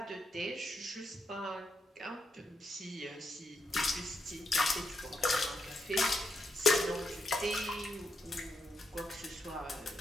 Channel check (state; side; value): normal; both; correlation 0.81